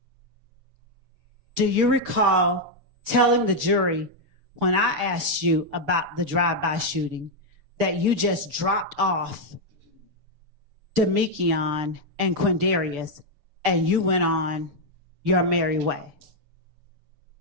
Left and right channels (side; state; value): left; late; 6.8 ms